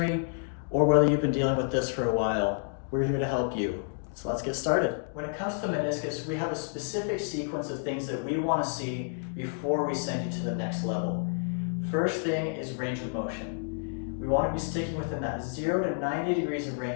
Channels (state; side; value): silent; right; digital silence